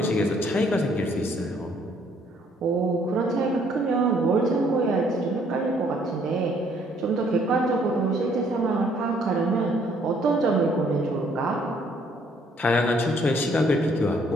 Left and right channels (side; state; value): both; normal; correlation 0.64